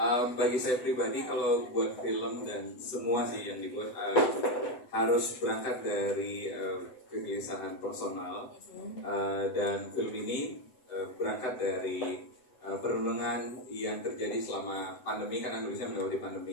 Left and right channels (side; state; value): right; late; 7.9 ms